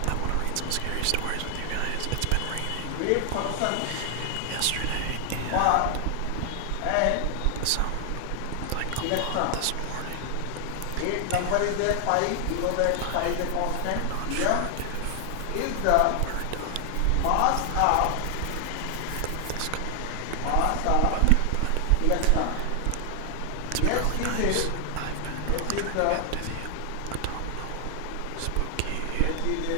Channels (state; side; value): different; both; correlation 0.00